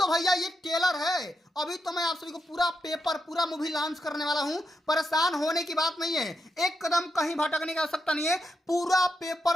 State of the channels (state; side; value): normal; both; correlation 0.83